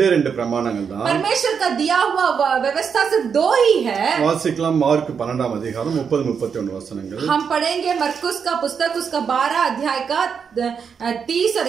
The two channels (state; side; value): quieter; left; 6.6 dB